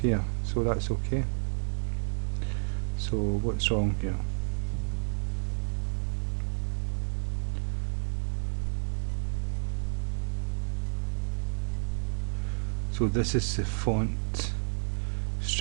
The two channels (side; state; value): left; silent; digital silence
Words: here, so that's okay. So what's wrong here? So this is the font,